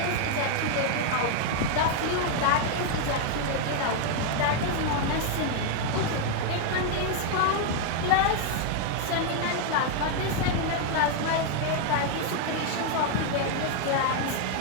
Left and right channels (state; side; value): different; both; correlation 0.00